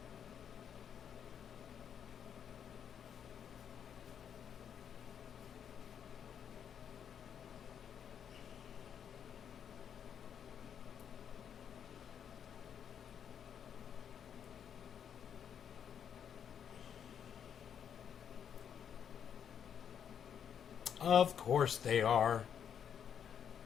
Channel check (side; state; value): right; quieter; 8.2 dB